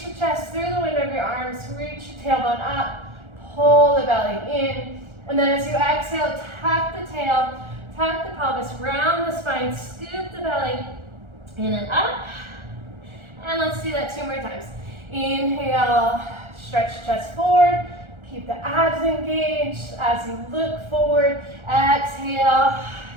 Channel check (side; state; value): left; late; 1.4 ms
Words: the chest through the window of your arms, reach your tailbone up, pull the belly in. And then as you exhale, tuck the tail, tuck the pelvis, round the spine, scoop the belly in and up. And let's do that 2 more times. Inhale, stretch the chest forward. Keep the abs engaged as you look forward. Exhale,